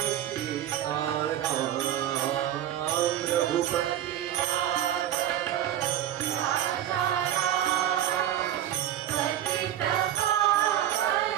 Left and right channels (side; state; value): left; quieter; 11.7 dB